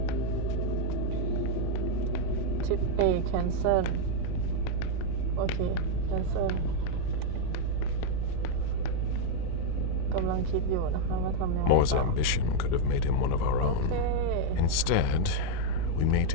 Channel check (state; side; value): different; both; correlation 0.00